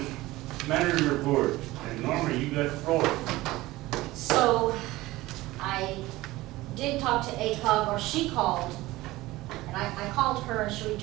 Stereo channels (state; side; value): quieter; left; 18.5 dB